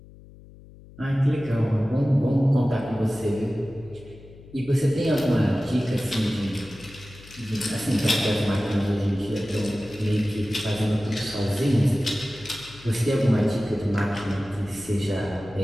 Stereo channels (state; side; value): noise; left; hum, 21 dB below the sound